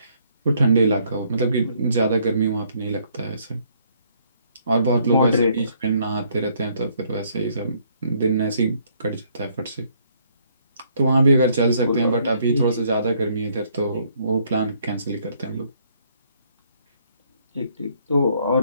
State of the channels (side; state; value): both; inverted; correlation -0.67